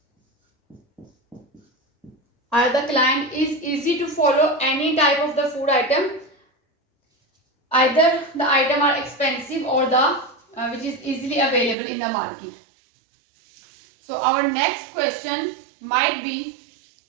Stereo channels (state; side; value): drops out; left; at 11.8 s